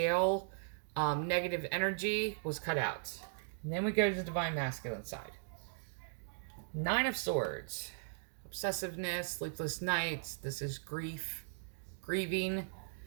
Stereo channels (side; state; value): left; silent; digital silence